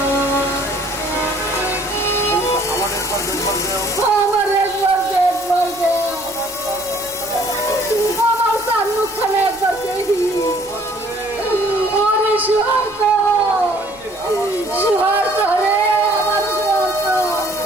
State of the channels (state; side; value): noise; right; rumble, 28 dB below the sound